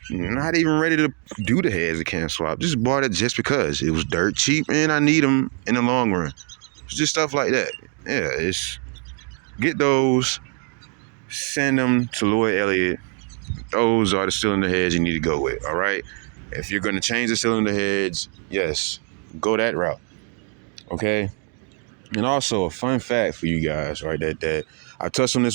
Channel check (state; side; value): quieter; left; 39.2 dB